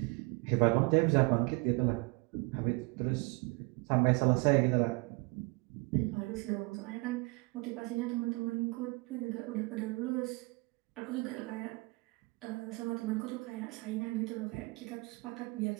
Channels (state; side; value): quieter; left; 27.0 dB